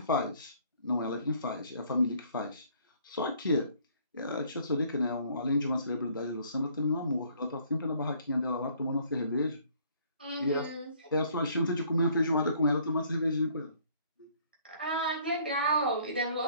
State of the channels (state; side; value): inverted; both; correlation -0.60